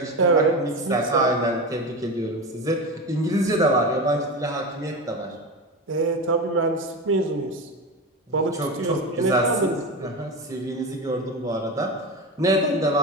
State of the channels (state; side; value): normal; both; correlation 0.22